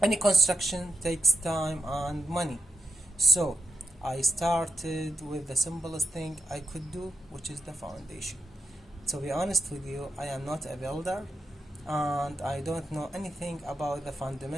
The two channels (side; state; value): both; normal; correlation 0.85